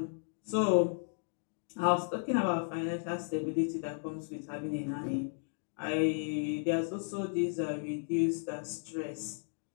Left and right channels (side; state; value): right; silent; digital silence